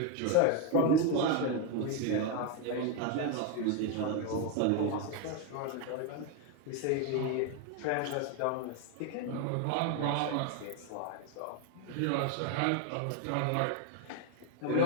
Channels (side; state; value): both; different; correlation 0.02